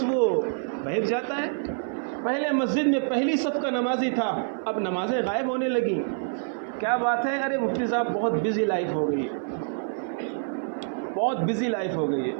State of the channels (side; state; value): left; silent; 56 dB below the other